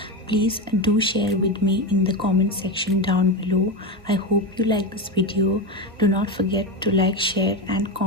please do share with me in the comment section down below. I hope you like this video. Do not forget to like, share and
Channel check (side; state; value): both; normal; correlation 0.16